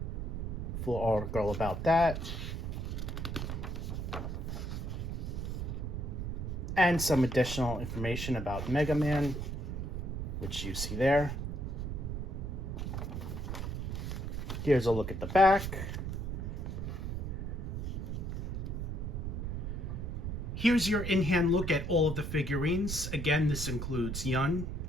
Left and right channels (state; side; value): noise; right; rumble, 3 dB below the sound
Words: Full article about that. And some additional information about Mega Man, which you see there. Here's a look at the back. Here's your in-hand look at all of the figurines. Again, this includes Yun,